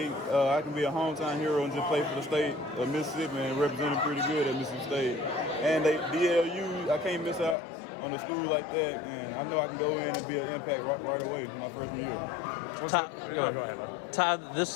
I can be a hometown hero and just play for the state of Mississippi and represent them pretty good at Mississippi State. And DLU, I can't miss out on a school like that, and I know I can go in and be an impact right away my freshman year. Ty,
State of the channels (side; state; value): right; drops out; at 7.6 s